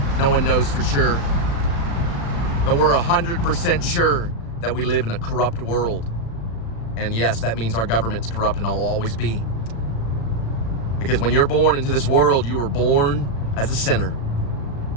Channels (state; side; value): late; right; 36 ms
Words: No one knows for sure. But we're 100% sure that we live in a corrupt world. And yes, that means our government's corrupt and will always be. Because when you're born into this world, you were born as a sinner.